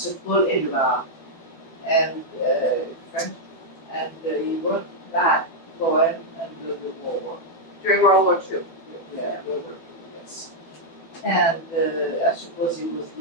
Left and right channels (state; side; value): late; right; 12 ms